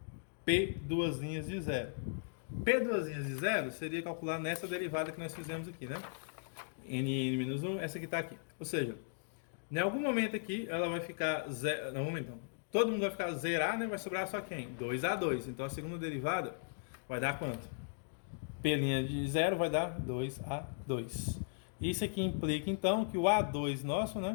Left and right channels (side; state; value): right; silent; digital silence